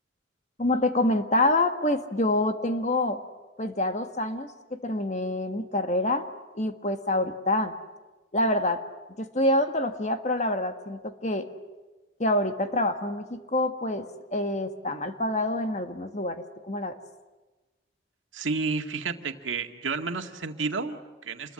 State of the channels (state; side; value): normal; both; correlation -0.04